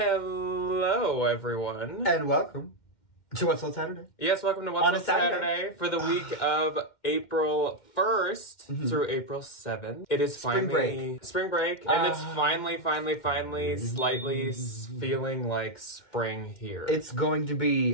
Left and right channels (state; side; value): late; right; 2.1 ms